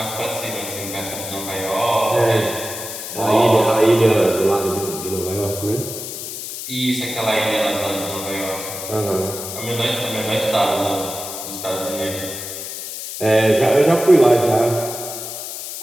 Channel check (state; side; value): noise; left; hiss, 8 dB below the sound